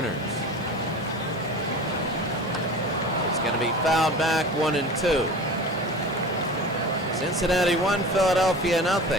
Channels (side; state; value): both; normal; correlation 0.36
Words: It's going to be fouled back, 1-2. Cincinnati 1, Philadelphia 0